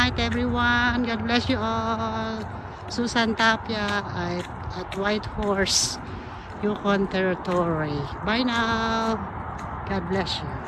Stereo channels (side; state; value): both; identical; correlation 1.00